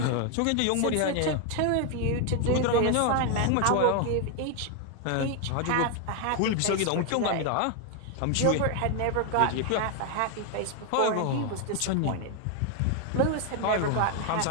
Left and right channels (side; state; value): both; different; correlation 0.01